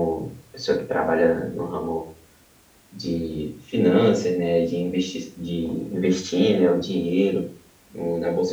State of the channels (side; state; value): both; identical; correlation 1.00